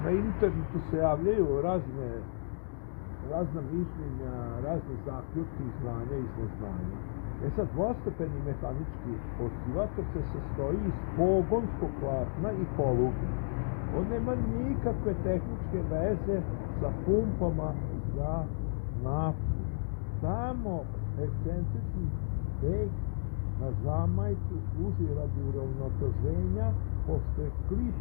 Na internetu se javljaju razna mišljenja, razne zaključke iz znanja i iz neznanja. Sad, dvostepeni mehanički oscilator se sastoji iz pogonskog platna i poluge. On nema nikakve tehničke veze sa pumpama za naftu. Tamo ekscentrični teg na zamajcu služi radi uravnoteženja, pošto je klip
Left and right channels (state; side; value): silent; right; digital silence